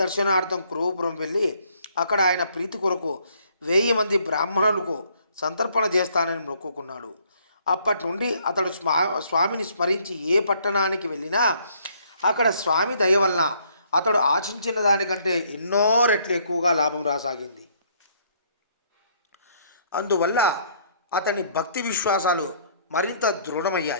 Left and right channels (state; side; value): inverted; both; correlation -0.65